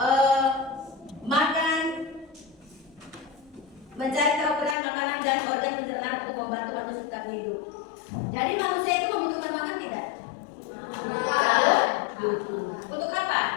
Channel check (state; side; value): drops out; right; at 4.8 s